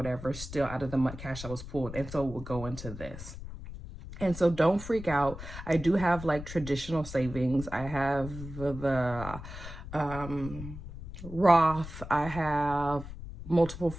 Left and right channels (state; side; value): noise; left; rumble, 11 dB below the sound